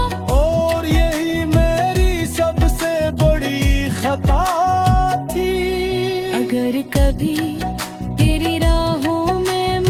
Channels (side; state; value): both; identical; correlation 1.00